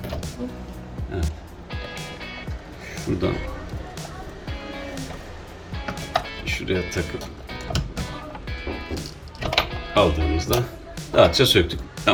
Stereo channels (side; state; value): both; identical; correlation 1.00